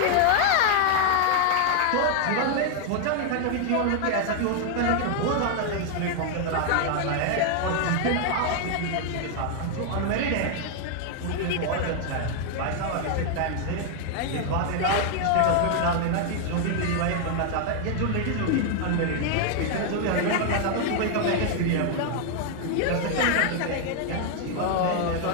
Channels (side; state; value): both; different; correlation 0.00